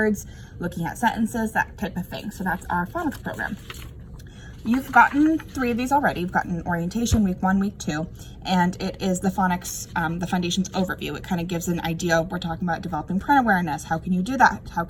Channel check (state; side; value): identical; both; correlation 1.00